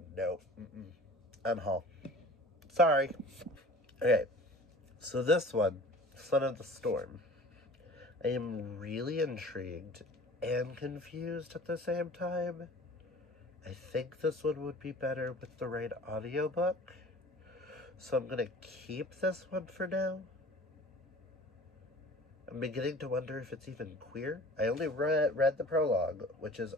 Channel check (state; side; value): normal; both; correlation 0.44